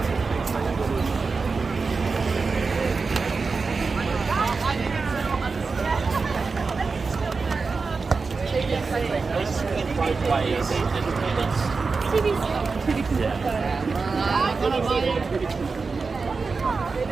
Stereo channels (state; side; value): quieter; left; 4.5 dB